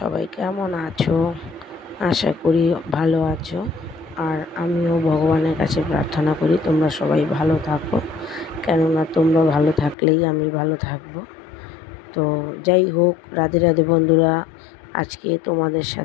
কেমন আছো? আশা করি ভালো আছো। আর আমিও ভগবানের কাছে প্রার্থনা করি তোমরা সবাই ভালো থাকো, কেননা তোমরা ভালো থাকলেই আমি ভালো থাকবো। তো যাই হোক, রাধে রাধে বন্ধুরা, আজকে তোমাদের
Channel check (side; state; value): right; drops out; at 10.0 s